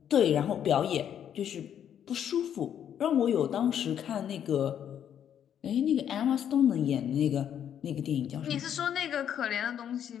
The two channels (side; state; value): right; quieter; 9.4 dB